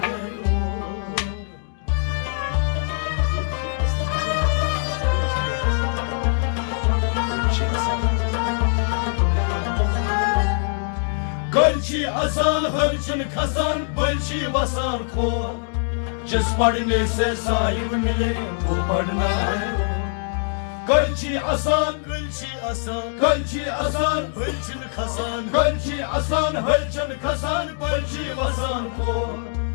है गलची आसान हरचन खसान बलची वसान खो जिस पढ़ने से साहिब मिले वो पढ़ना है गलची आसान Gölçi asan, गलची आसान bölçün kasan गलची आसान हरचन खसान बलची वसान खो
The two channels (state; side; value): silent; right; digital silence